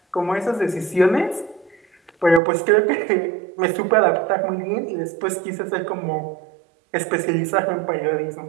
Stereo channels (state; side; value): drops out; left; at 2.4 s